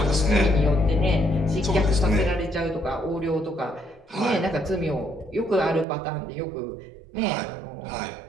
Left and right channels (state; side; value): drops out; left; at 5.9 s